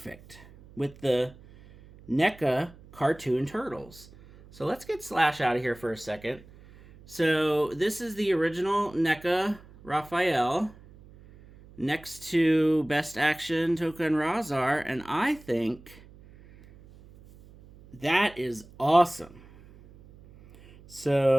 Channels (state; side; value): noise; right; hum, 22 dB below the sound